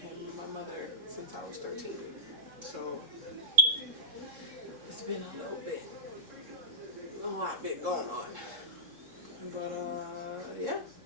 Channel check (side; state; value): left; late; 3.7 ms